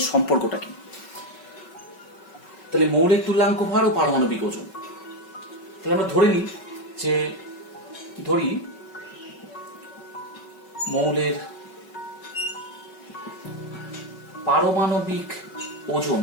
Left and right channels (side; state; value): right; late; 5.3 ms